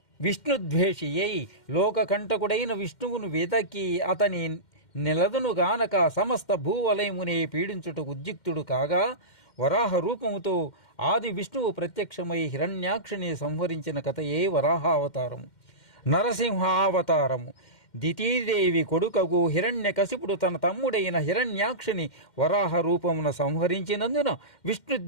విష్ణుద్వేషి అయి లోకకంటకుడైన విష్ణువును వెదకి అతని నిలదును గానక సమస్త భూవలయమునే పీడించుటకు ఉద్యుక్తుడు కాగా వరాహ రూపముతో ఆది విష్ణువు ప్రత్యక్షమై హిరణ్యాక్షుని సంహరించిన కథయే వరాహావతారము. నరసింహావతారము. దితీదేవి కొడుకగు హిరణ్యకశిపుడు తన తమ్ముడైన హిరణ్యాక్షుని వరాహ రూపమున సంహరించినందున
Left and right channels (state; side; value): late; right; 2.1 ms